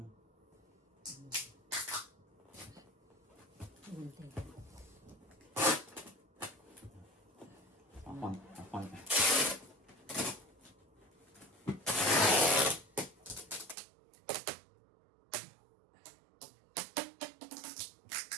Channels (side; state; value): left; drops out; at 13.8 s